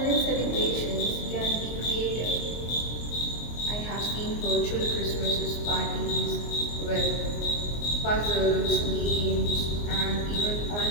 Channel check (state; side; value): late; right; 24 ms